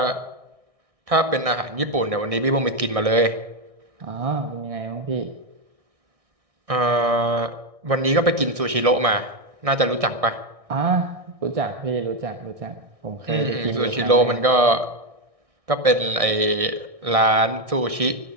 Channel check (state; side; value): late; left; 1.6 ms